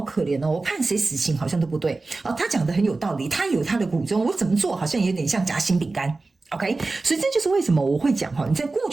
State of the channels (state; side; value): quieter; left; 3.5 dB